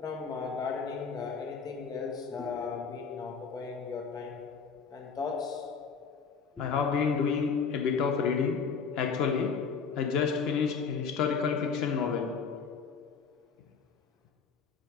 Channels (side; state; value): right; quieter; 5.7 dB